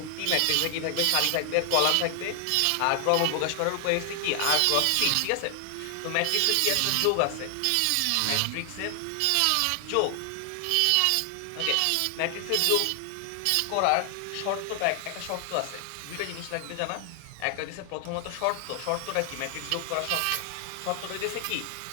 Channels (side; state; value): both; different; correlation 0.00